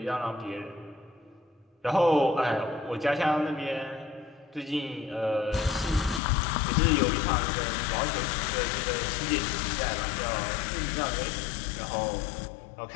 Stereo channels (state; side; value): drops out; right; at 6.2 s